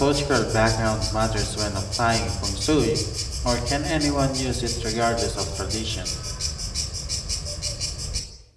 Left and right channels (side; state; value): both; identical; correlation 1.00